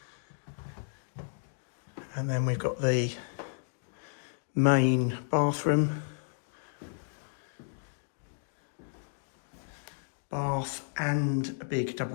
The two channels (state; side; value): silent; right; digital silence